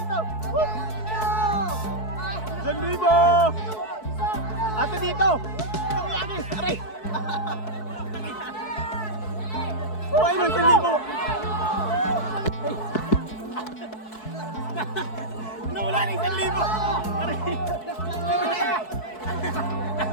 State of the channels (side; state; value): right; late; 4.6 ms